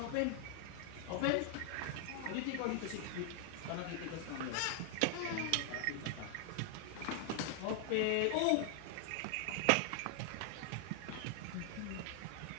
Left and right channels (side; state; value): both; different; correlation 0.00